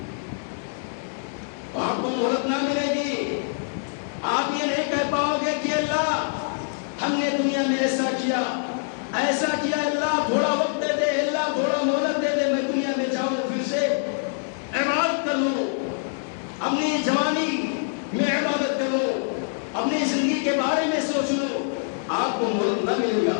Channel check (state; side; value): silent; right; digital silence